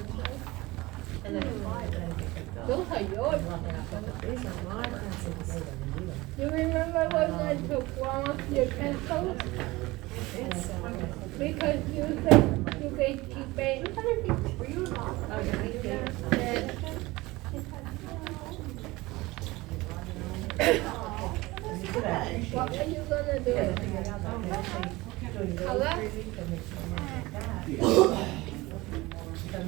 And then Those are yours. these are my pencils. You remember when I took one of your pencils? Because you said you could keep it. Were you involved? Oh, yeah, What are you gonna do? Color?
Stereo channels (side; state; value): left; quieter; 20.8 dB